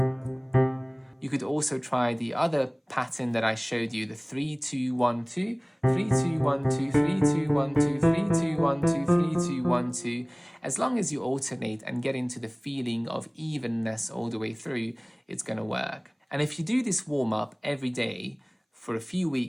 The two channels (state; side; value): identical; both; correlation 1.00